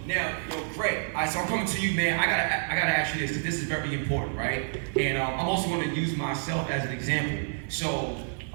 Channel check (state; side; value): silent; left; 59 dB below the other